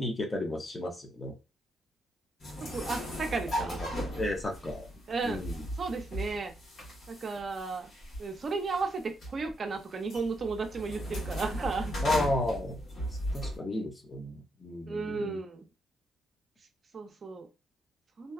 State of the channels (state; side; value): normal; both; correlation 0.78